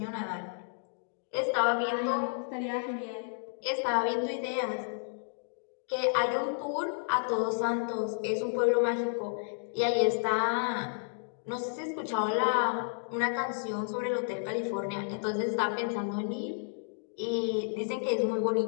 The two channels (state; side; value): silent; right; digital silence